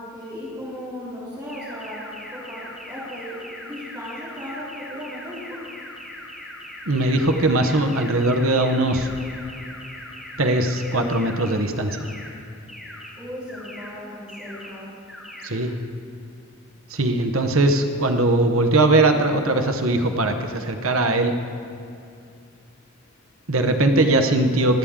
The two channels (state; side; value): normal; both; correlation 0.32